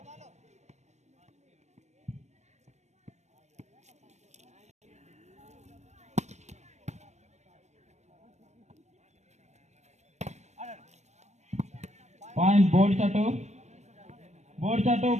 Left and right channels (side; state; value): left; late; 0.33 ms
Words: Point board shot. Board shot